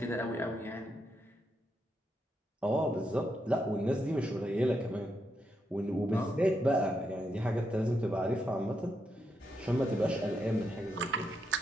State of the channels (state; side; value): normal; both; correlation 0.82